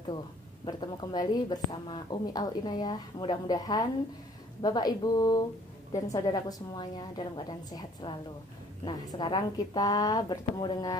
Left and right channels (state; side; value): normal; both; correlation 0.57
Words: wabarakatuh. Bertemu kembali bersama Umi Al Inayah. Mudah-mudahan Bapak Ibu dan saudaraku semuanya dalam keadaan sehat selalu. Nah, sekarang kita bertemu